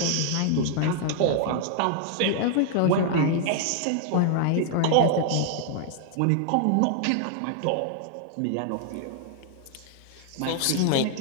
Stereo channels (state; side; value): different; both; correlation 0.00